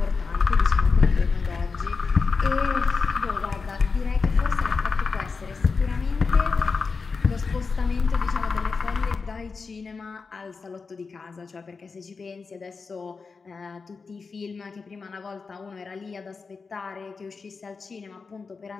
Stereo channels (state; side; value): quieter; right; 4.7 dB